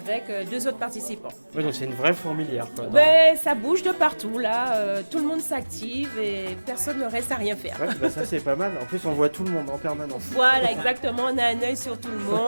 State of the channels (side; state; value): both; inverted; correlation -1.00